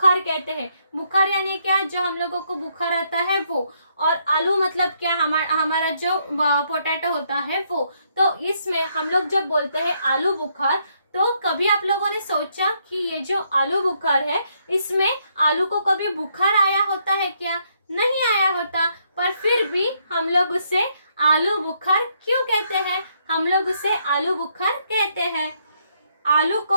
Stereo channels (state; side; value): inverted; both; correlation -0.74